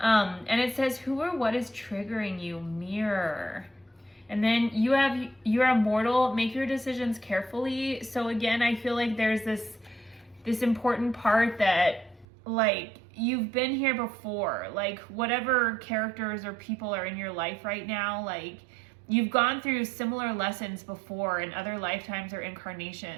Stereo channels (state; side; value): drops out; left; at 12.2 s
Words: it says, who or what is triggering you? Mirror. And then you're immortal, make your decisions carefully. So again, I feel like there's this important part that like you've been here before, like whatever characters or people are in your life right now, like you've gone through similar lessons before in other lifetimes or